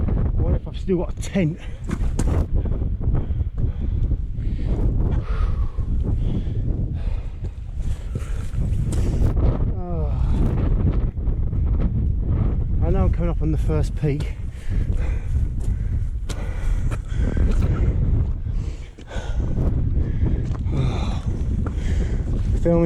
Still got a tent. Oh. I know I'm coming up on the first peak.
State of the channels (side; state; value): both; identical; correlation 1.00